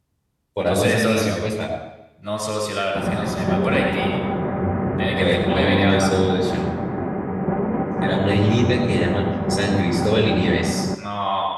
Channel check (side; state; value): both; identical; correlation 1.00